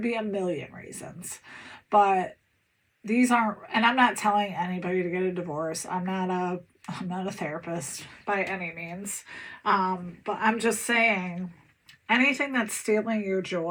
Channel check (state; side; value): identical; both; correlation 1.00